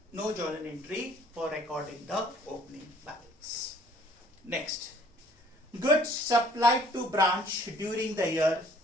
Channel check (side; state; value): both; normal; correlation 0.57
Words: No journal entry for recording the opening balance. Next, goods supplied to branch during the year